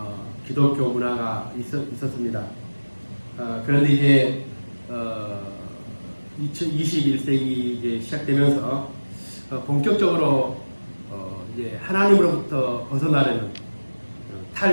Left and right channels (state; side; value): inverted; both; correlation -1.00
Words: 기독교 문화가 있었습니다. 그런데 이제 21세기 이제 시작되면서 본격적으로 이제 하나님으로부터 벗어나려는